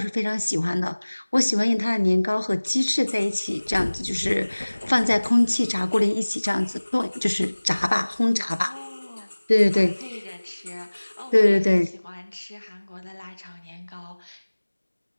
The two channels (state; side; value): inverted; both; correlation -1.00